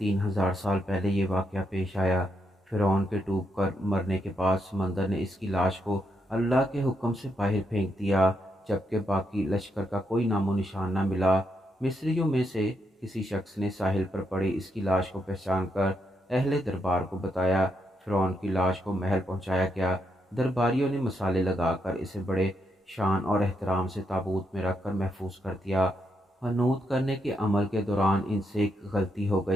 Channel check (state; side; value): normal; both; correlation 0.80